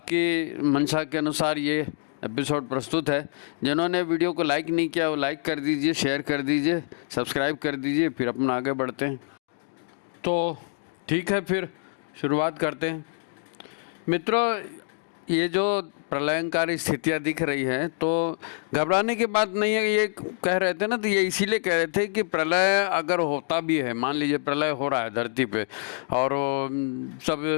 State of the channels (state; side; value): silent; right; digital silence